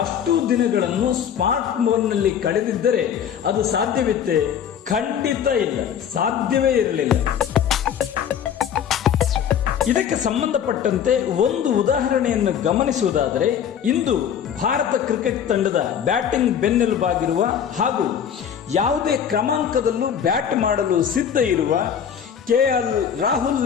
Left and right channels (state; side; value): quieter; right; 8.4 dB